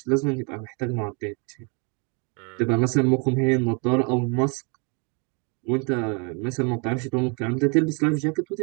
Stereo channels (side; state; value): left; quieter; 34.8 dB